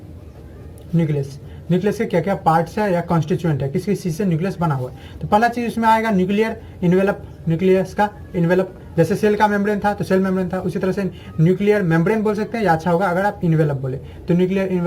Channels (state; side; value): identical; both; correlation 1.00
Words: न्यूक्लियस। न्यूक्लियस के क्या क्या पार्ट्स है या कॉन्स्टिट्यूएंट है, किस किस चीज़ से न्यूक्लियस बना हुआ है। तो पहला चीज़ उसमें आएगा न्यूक्लियर इन्वेलप, न्यूक्लियस का इन्वेलप। जैसे सेल का मेम्ब्रेन था तो सेल मेम्ब्रेन था, उसी तरह से न्यूक्लियर मेम्ब्रेन बोल सकते हैं, या अच्छा होगा अगर आप इन्वेलप बोले तो न्यूक्लियर